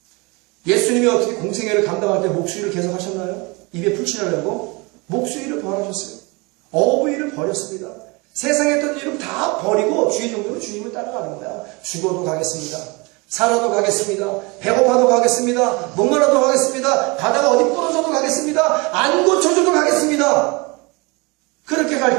예수님이 어떻게 공생애를 감당할 때 목수일을 계속 하셨나요? 입에 풀칠하려고 목수일을 벌하셨어요. 어부일을 버렸습니다. 세상에 있던 일을 다 버리고 주의 종으로 주님을 따라가는 거야. 죽어도 가겠습니다. 살아도 가겠습니다. 배고파도 가겠습니다. 목마라도 가겠습니다. 가다가 어디 부러져도 가겠습니다. 안 고쳐줘도 가겠습니다. 그렇게 갈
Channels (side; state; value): left; quieter; 27.3 dB